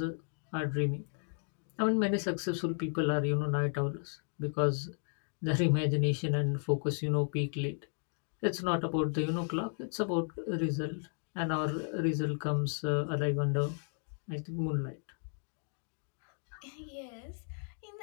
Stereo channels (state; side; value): silent; right; 55 dB below the other